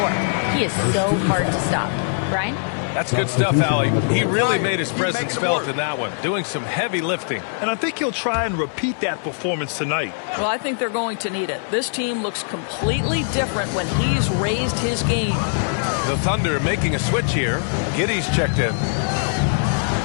He is so hard to stop. Brian? That's good stuff, Allie. He really made his presence felt in that one, doing some heavy lifting. And I think he'll try and repeat that performance tonight. Well, I think they're going to need it. This team looks completely different when he's raised his game. The Thunder making a switch here. Giddey's checked in.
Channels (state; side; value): silent; right; digital silence